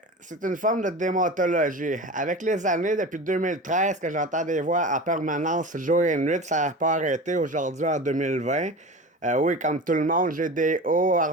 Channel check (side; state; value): both; normal; correlation 0.32